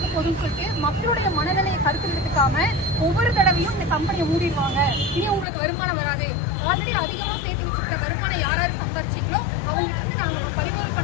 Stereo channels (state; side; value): drops out; right; at 5.5 s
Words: போகுதுன்னு சொல்லிட்டு மக்களுடைய மனநிலையை கருத்தில் எடுத்துக்காம ஒவ்வொரு தடவையும் இந்த கம்பெனியை மூடிடுவாங்க, இனி உங்களுக்கு வருமானம் வராது, ஆல்ரெடி அதிகமா சேர்த்து வச்சுக்கிற வருமானம் யாராவது சம்பாதிச்சிங்களோ அவங்ககிட்ட இருந்து நாங்க பறிமுதல்